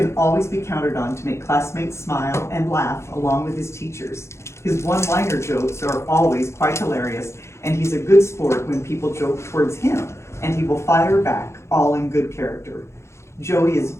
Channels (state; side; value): late; right; 0.13 ms